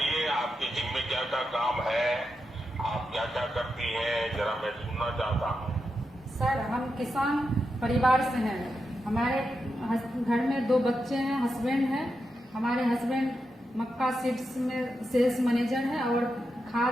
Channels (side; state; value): both; normal; correlation 0.87